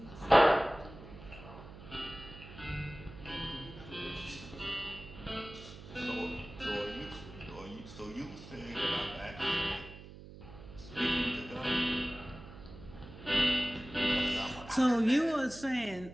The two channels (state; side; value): noise; right; hum, 16 dB below the sound